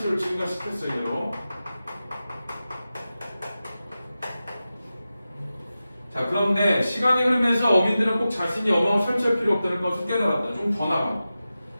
증가시켰어 이대로. 자, 그런데 시간이 흐르면서 어민들은 꼭 자신이 어망을 설치할 필요 없다는 것을 깨달았다. 좀 더 나가.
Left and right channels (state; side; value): inverted; both; correlation -0.93